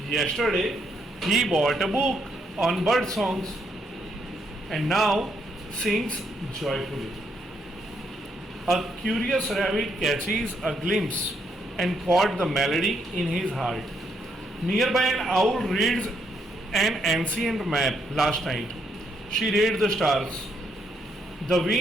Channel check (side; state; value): both; normal; correlation 0.75